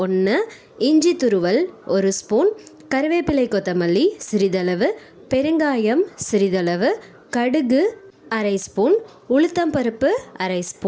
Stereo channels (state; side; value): identical; both; correlation 1.00